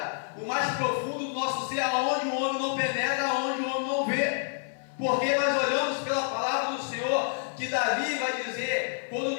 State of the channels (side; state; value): right; silent; 57 dB below the other